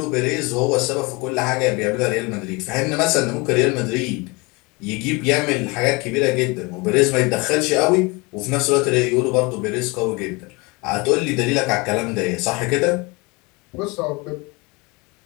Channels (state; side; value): quieter; right; 26.6 dB